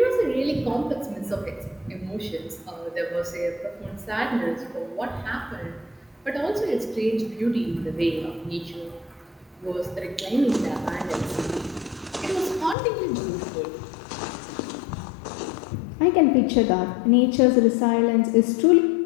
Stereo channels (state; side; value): drops out; right; at 12.8 s